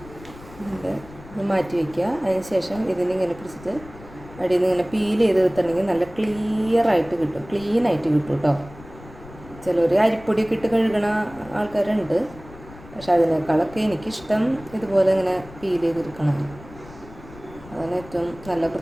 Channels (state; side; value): noise; left; rumble, 19 dB below the sound